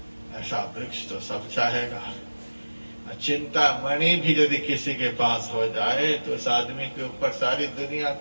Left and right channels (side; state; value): both; inverted; correlation -1.00